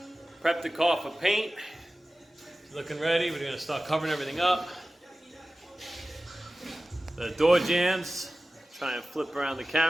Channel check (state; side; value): normal; both; correlation 0.96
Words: prep the car for paint. Looking ready. We're gonna start covering everything up. The door jambs. Try and flip around the